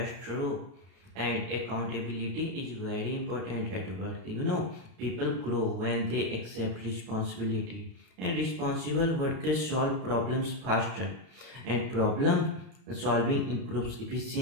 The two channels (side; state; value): left; late; 32 ms